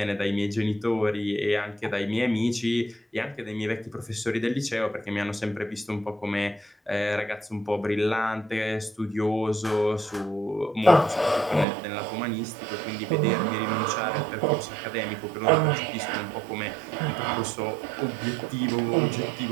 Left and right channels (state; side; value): drops out; left; at 11.7 s